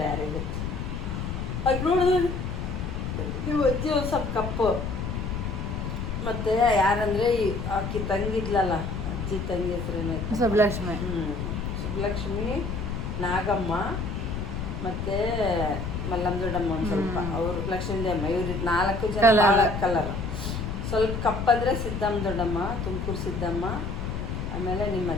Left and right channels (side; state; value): left; noise; rumble, 4 dB below the sound